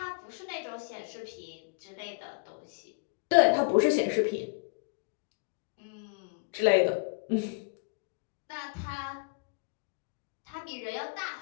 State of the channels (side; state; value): right; quieter; 35.4 dB